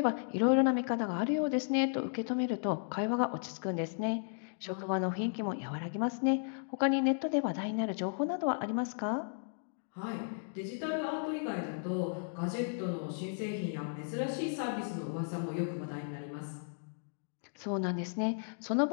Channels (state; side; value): silent; right; digital silence